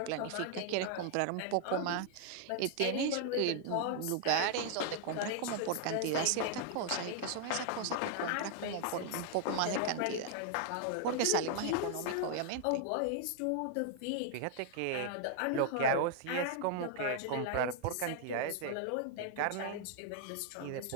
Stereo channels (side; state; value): both; different; correlation 0.00